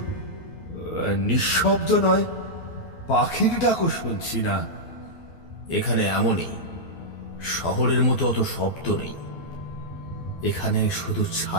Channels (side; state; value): right; late; 12 ms